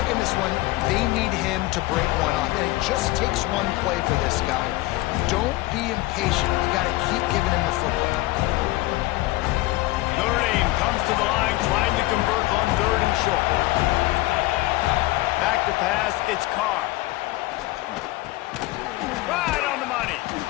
in this one, they need him to break one off, and it just takes one play for this guy. Don't be impatient. You got to keep giving him the football. Notre Dame comes to the line trying to convert on 3rd and short. Back to pass, it's Carr. Right on the money.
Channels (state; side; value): quieter; right; 19.3 dB